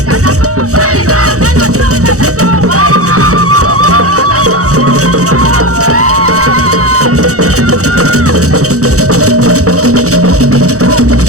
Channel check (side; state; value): left; late; 0.65 ms